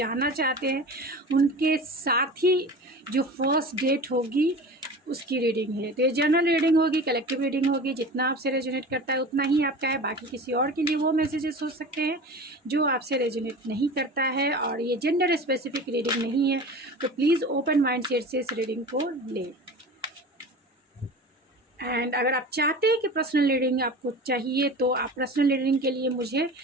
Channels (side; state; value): both; normal; correlation 0.35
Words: चाहते हैं। उनके साथ ही जो फर्स्ट डेट होगी उसकी रीडिंग है। तो ये जनरल रीडिंग होगी, कलेक्टिव रीडिंग होगी। जितना आपसे रेजोनेट करता है उतना ही आपका है। बाकी किसी और के लिए वो मैसेजेस हो सकते हैं जो आपसे रेजोनेट नहीं करता है। और ये जेंडर स्पेसिफिक रीडिंग नहीं है, तो प्लीज़ ओपन माइंड सेट से इस रीडिंग को लें। एंड अगर आप चाहते हैं कि पर्सनल रीडिंग आपको चाहिए तो आप पर्सनल रीडिंग के लिए मुझे